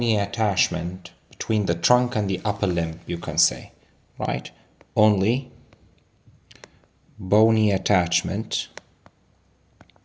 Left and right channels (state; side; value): identical; both; correlation 1.00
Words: attachment between the trunk and the upper limb, you can say, right? Only bony attachment,